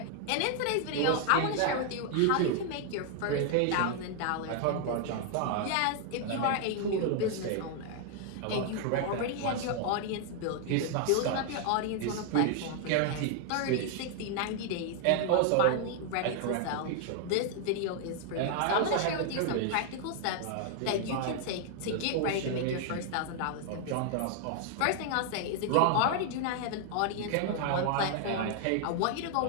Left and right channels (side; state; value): both; different; correlation 0.00